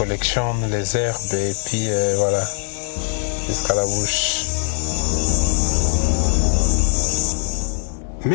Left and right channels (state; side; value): silent; right; digital silence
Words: les herbes et puis voilà, jusqu'à la bouche.